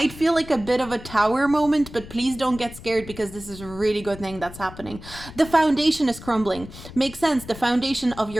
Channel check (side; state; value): left; noise; rumble, 15 dB below the sound